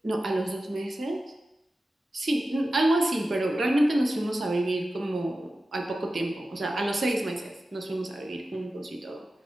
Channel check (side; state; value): both; normal; correlation 0.94